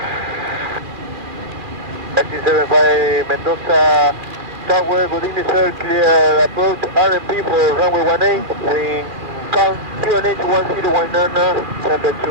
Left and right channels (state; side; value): late; left; 2.4 ms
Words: EXIT75 Mendoza Tower, good evening sir, clear approach RMP for runway 18, wind count QNH 1019,